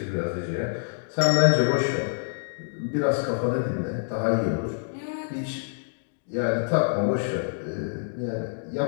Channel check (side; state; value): right; silent; digital silence